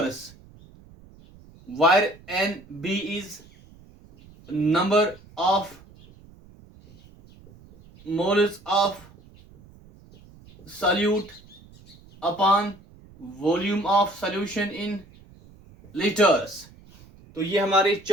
where N B is number of moles of solute upon volume of solution in litres. तो ये हमारे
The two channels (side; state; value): right; noise; rumble, 24 dB below the sound